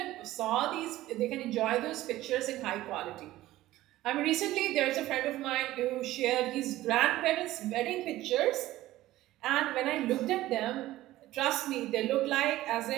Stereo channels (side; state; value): left; quieter; 15.8 dB